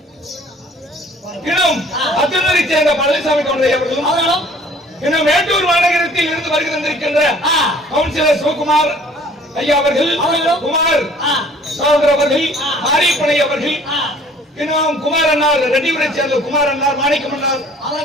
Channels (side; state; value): both; normal; correlation 0.53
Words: இன்னும் அத்துணரை சேர்ந்த பழனிசாமி கொன்றை அவர்களும் இன்னும் மேட்டூர் மாநகரத்தில் இருந்து வருகை தந்திருக்கின்ற கவுன்சிலர் சிவகுமார் ஐயா அவர்கள், குமார் சகோதரர் அவர்கள், மாரியப்பனை அவர்கள், இன்னும் குமார் அண்ணார் ரெட்டிபுரை சேர்ந்த குமார் அண்ணார், மாணிக்கம் அண்ணார்,